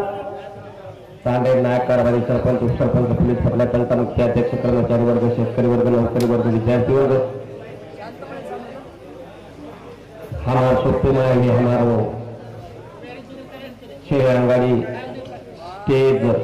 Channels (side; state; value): both; identical; correlation 1.00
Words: तांडेर नायक कारभारी सरपंच उपसरपंच पोलीस पटला जनता मुख्य अध्यक्ष कर्मचारी वर्ग शेतकरी वर्ग नौकरी वर्ग विद्यार्थी वर्ग, हमारा सोते में भी हमारो शेर अंगाड़ी स्टेज